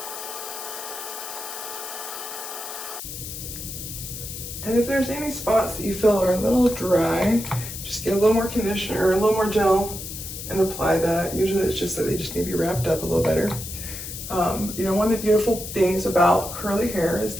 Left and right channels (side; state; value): left; noise; hiss, 9 dB below the sound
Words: And if there's any spots that you feel are a little dry, just get a little more conditioner or a little more gel and apply that. Usually it's just that they just need to be wrapped up a little better. You know, one of the beautiful things about curly hair is